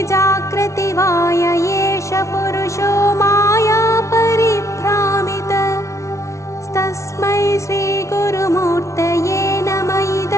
जागृति वाय एष पुरुषो माया परिभ्रामितः। तस्मै श्रीगुरुमूर्तये नमः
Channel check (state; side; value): late; right; 0.14 ms